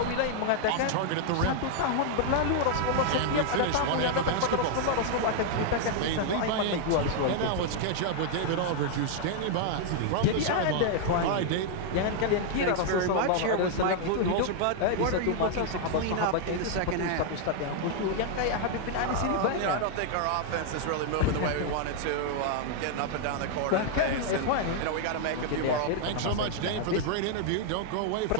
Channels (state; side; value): different; both; correlation 0.00